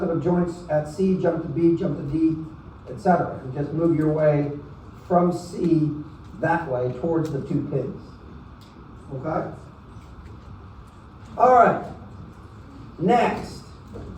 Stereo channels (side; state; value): both; identical; correlation 1.00